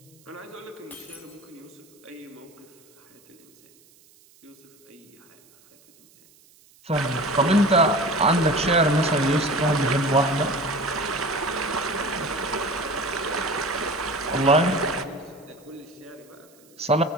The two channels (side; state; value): right; noise; hiss, 29 dB below the sound